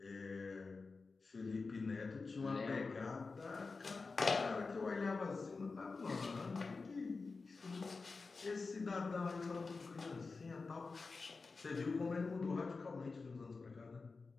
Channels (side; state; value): right; quieter; 4.2 dB